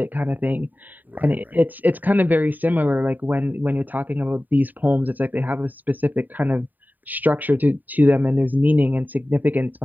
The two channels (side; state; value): left; late; 0.087 ms